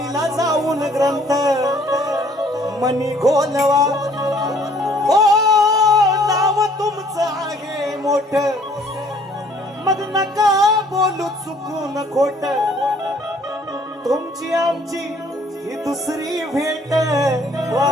जाऊन ग्रंथ, मनी घोलवा. हो नाव तुमचं आहे मोठ, मग नका बोलू चुकून खोट, तुमची आमची ही दुसरी भेट. वा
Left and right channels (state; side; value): normal; both; correlation 0.59